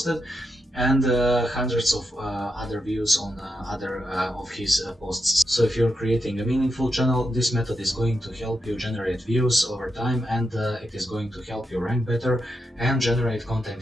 and hundreds of other views on other of his posts. So if you're creating a meaningful channel, this method is going to help you generate views over time, and it is going to help you rank better and generate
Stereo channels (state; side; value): normal; both; correlation 0.85